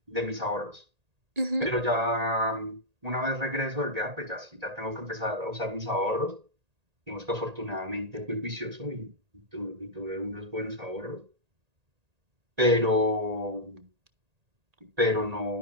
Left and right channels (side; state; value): left; late; 1.8 ms